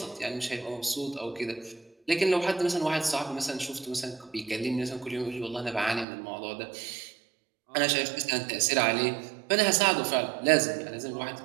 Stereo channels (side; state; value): left; drops out; at 6.1 s